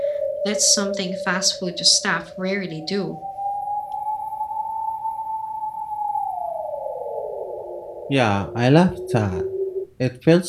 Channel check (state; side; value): identical; both; correlation 1.00